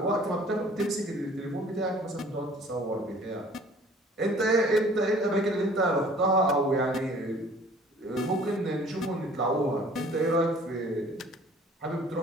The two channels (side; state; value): both; normal; correlation 0.52